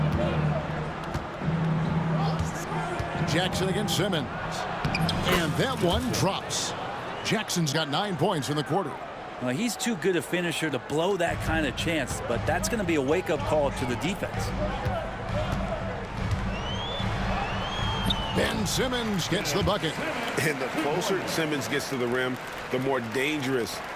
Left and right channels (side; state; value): both; identical; correlation 1.00